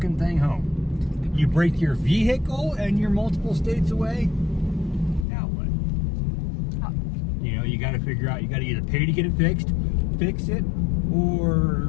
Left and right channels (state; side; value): drops out; right; at 5.2 s